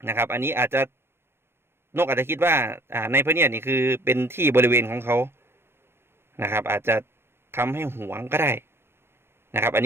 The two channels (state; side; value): late; left; 0.11 ms